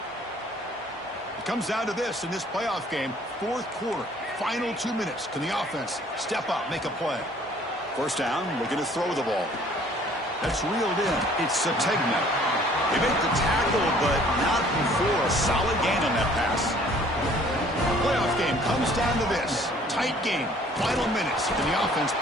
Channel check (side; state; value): both; normal; correlation 0.56